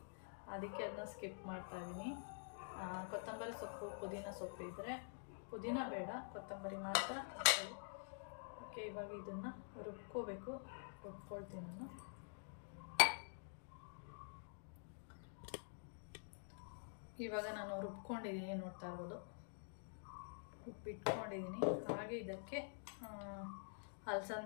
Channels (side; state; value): right; silent; digital silence